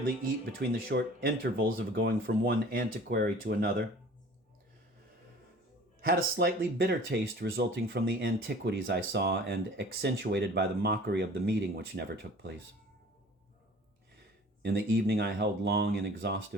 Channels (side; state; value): both; normal; correlation 0.46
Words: eat between the short intervals of going from one antiquary to another, had a slightly bitter taste resulting from the antiquities I saw and accentuated by the mockery of the meeting which never took place. In the evening, I held long and